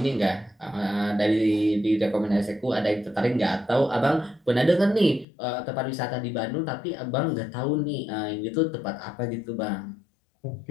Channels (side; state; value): right; drops out; at 5.2 s